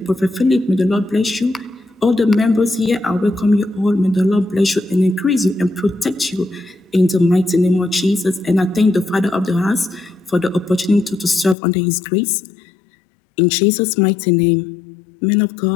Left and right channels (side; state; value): right; drops out; at 11.6 s